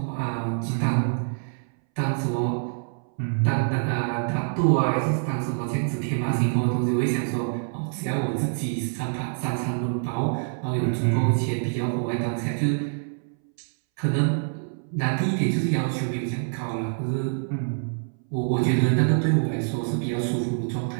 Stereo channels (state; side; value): silent; left; 61 dB below the other